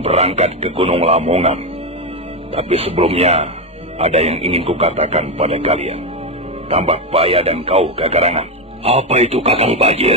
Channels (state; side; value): normal; both; correlation 0.10